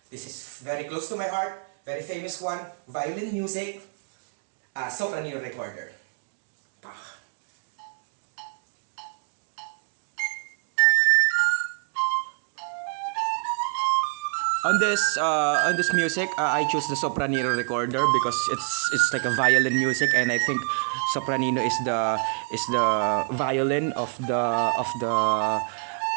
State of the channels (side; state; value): left; quieter; 39.5 dB